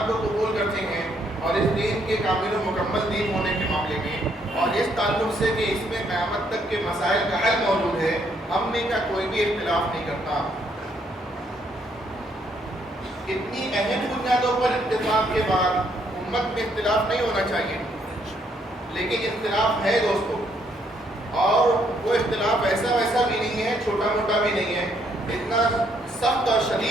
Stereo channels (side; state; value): both; normal; correlation 0.71